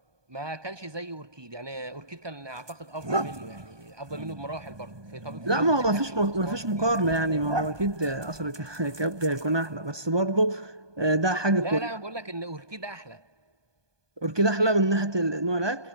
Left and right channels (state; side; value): late; left; 1.2 ms